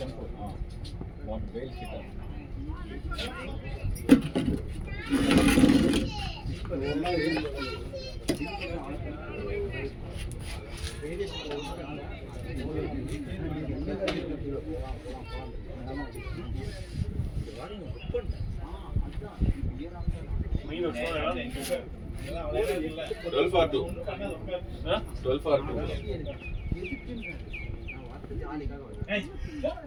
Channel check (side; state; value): both; identical; correlation 1.00